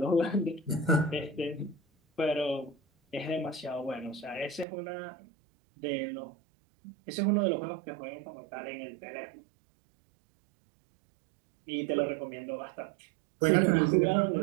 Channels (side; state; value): left; drops out; at 4.7 s